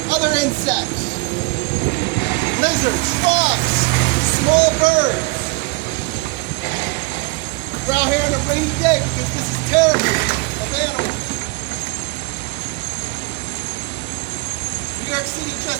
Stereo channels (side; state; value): left; quieter; 26.7 dB